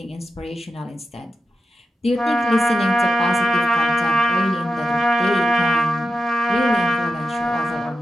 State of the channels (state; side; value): normal; both; correlation 0.90